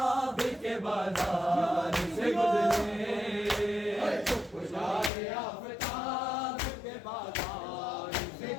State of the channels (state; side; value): drops out; right; at 5.1 s